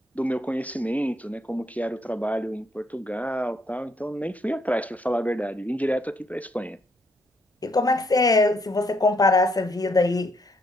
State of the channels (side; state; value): both; normal; correlation 0.71